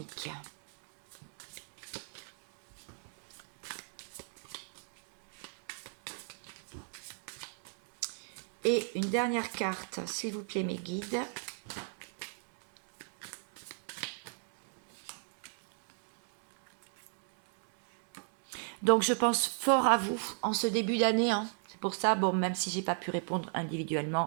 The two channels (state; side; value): silent; left; 53 dB below the other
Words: Et une dernière carte, s'il vous plaît, mes guides. Donc, je pense fort à vous en ce début d'année. Hein. C'est pour ça, bon, même si j'ai pas pu répondre